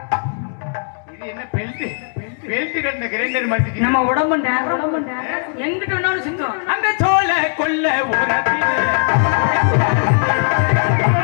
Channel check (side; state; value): right; silent; digital silence